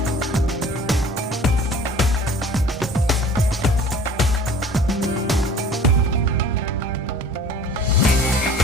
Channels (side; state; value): both; normal; correlation 0.47